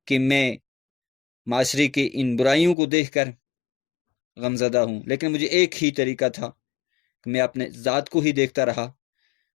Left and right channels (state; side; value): drops out; right; at 2.8 s